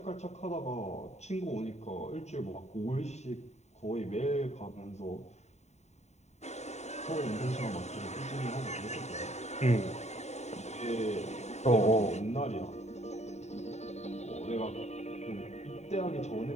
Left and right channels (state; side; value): late; right; 0.32 ms